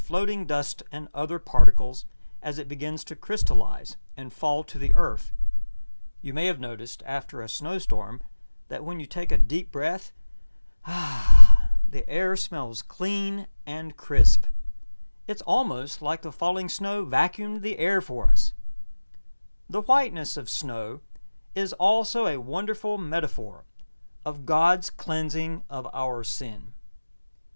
dust and other particles as it begins to crystallize and fall to the earth. You may have noticed after a snowstorm that when you take a deep breath, the air smells clean and crisp. It's almost like the falling snow vacuumed the air for us. The whiteness of snow is also a wonderful metaphor of God's cleansing of our sin.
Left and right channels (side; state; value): both; inverted; correlation -1.00